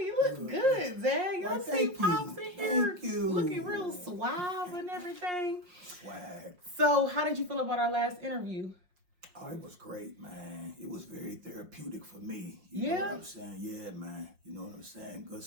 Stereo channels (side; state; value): left; late; 5.6 ms